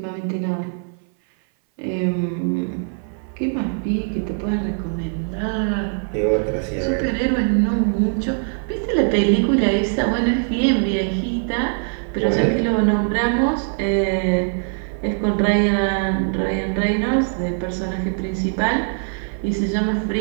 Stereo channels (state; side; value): silent; left; 60 dB below the other